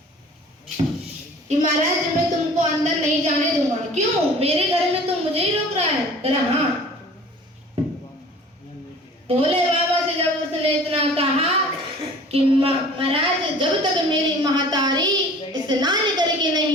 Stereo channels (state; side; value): normal; both; correlation 0.46